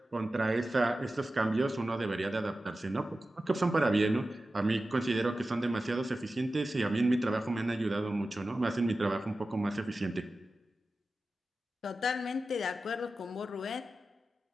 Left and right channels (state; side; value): normal; both; correlation 0.94